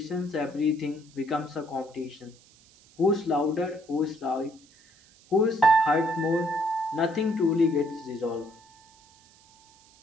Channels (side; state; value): right; noise; hiss, 28 dB below the sound